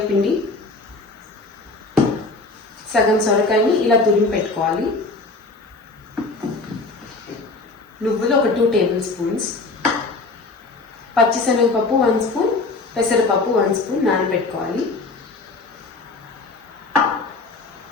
పిండి, సగం సొరకాయని ఇలా తురిమి పెట్టుకోవాలి. నువ్వులు ఒక 2 టేబుల్ స్పూన్స్, పచ్చిశనగపప్పు 1 స్పూన్, పెసరపప్పు 1 స్పూన్ నానబెట్టుకోవాలి.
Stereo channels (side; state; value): right; quieter; 3.5 dB